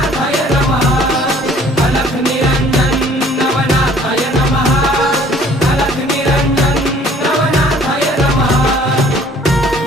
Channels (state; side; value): normal; both; correlation 0.55